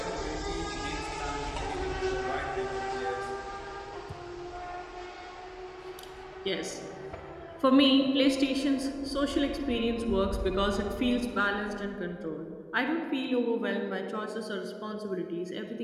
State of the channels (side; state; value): both; identical; correlation 1.00